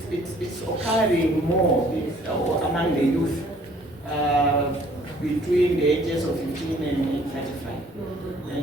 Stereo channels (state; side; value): normal; both; correlation 0.58